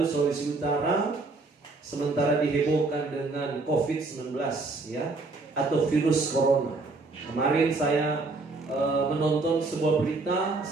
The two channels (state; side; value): quieter; left; 3.5 dB